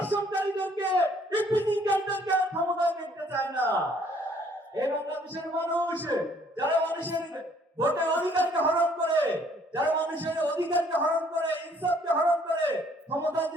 ইপিজিকারীদেরকে ক্ষমতায় দেখতে চায় না। এই বাংলাদেশের মানুষ যারা মানুষের ভোটের অধিকারকে হরণ করে, যারা মানুষের অধিকারকে হরণ করে, ইনসাফকে হরণ করে ক্ষমতায়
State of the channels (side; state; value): both; normal; correlation 0.62